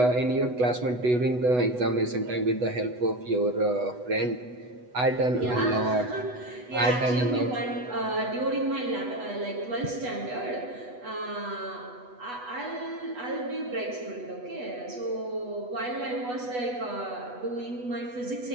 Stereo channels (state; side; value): late; left; 8.1 ms